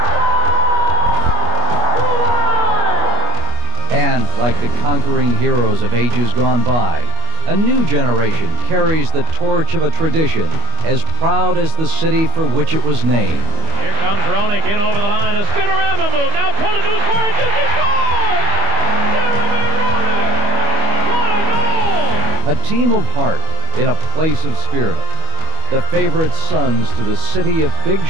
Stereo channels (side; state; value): left; late; 25 ms